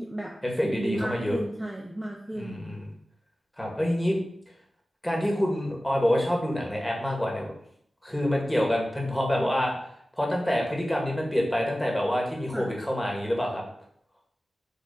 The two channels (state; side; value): normal; both; correlation 0.96